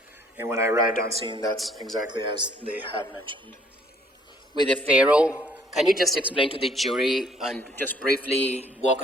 And when I arrived on scene, that's exactly as they had mentioned. With the FARO, can you just explain to the jury and just briefly walk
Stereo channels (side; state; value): both; normal; correlation 0.62